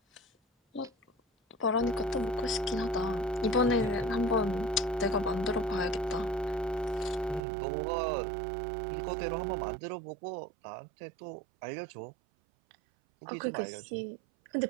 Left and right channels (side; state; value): left; drops out; at 7.4 s